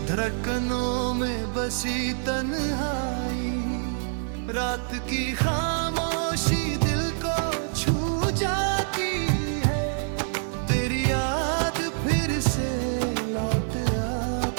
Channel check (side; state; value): left; silent; 61 dB below the other